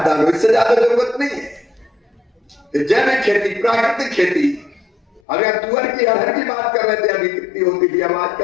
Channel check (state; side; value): drops out; right; at 5.2 s